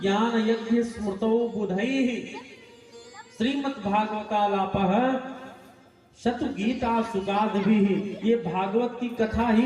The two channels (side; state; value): both; identical; correlation 1.00